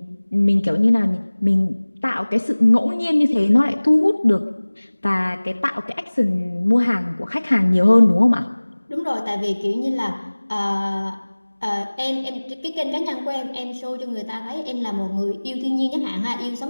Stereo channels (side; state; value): both; inverted; correlation -1.00